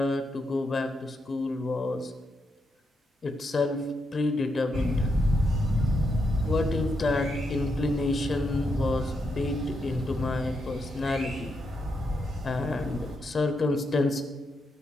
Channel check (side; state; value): both; normal; correlation 0.82